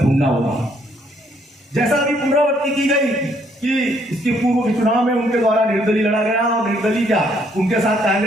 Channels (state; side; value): normal; both; correlation 0.68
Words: ढूंढना होगा। जैसा अभी पुनरावृत्ति की गई कि इसके पूर्व के चुनाव में उनके द्वारा निर्दलीय लड़ा गया और निर्दलीय क्या उनके साथ